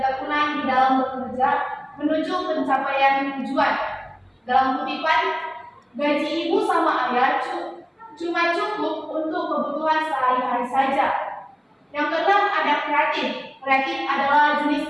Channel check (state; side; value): identical; both; correlation 1.00